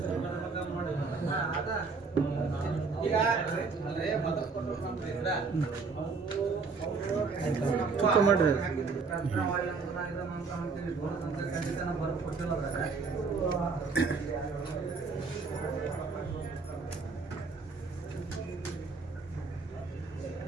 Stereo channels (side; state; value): left; quieter; 4.5 dB